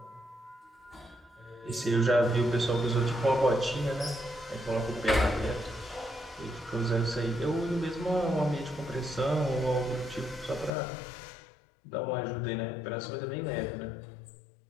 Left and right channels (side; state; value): right; drops out; at 10.7 s